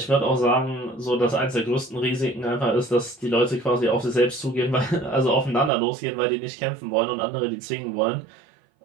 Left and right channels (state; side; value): drops out; left; at 5.7 s